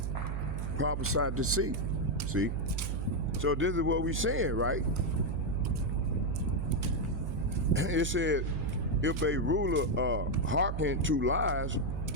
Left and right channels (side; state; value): right; noise; hum, 2 dB below the sound